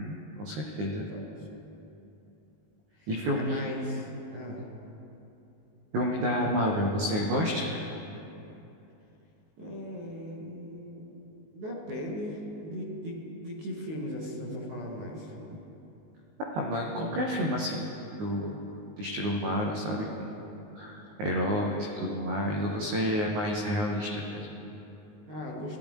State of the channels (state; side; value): late; left; 19 ms